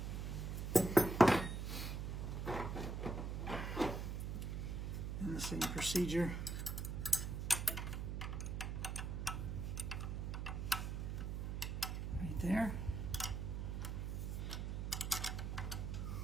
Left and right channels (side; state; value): right; noise; hum, 2 dB below the sound